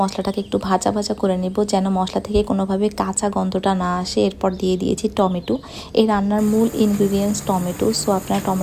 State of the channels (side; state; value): both; identical; correlation 1.00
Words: মশলাটাকে একটু ভাজা ভাজা করে নেব, যেন মশলা থেকে কোনোভাবে কাঁচা গন্ধটা না আসে। এরপর দিয়ে দিয়েছি টমেটো। এই রান্নার মূল ইনগ্রিডিয়েন্টস টমেটো, সো আপনারা